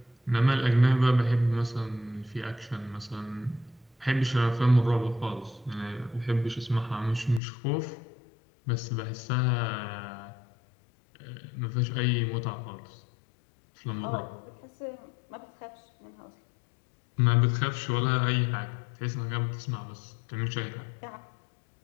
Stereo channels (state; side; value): drops out; right; at 7.4 s